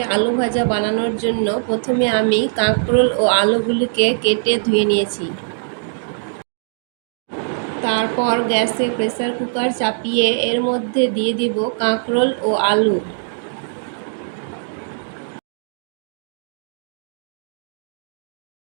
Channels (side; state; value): left; silent; digital silence